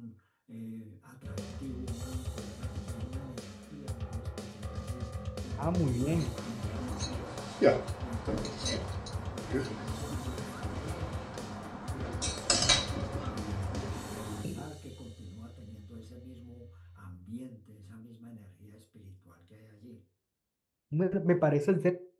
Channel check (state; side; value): identical; both; correlation 1.00